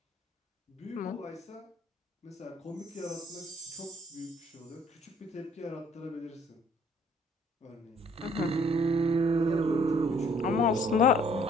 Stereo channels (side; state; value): both; normal; correlation 0.60